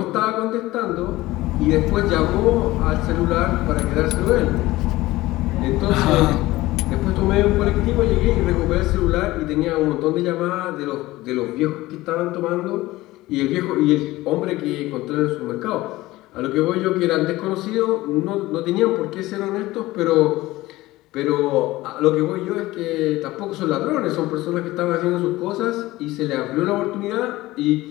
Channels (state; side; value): quieter; right; 18.1 dB